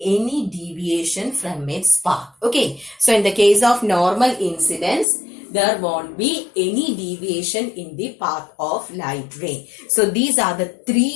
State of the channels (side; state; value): right; drops out; at 5.1 s